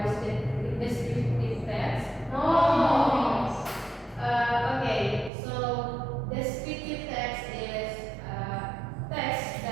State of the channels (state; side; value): drops out; left; at 5.3 s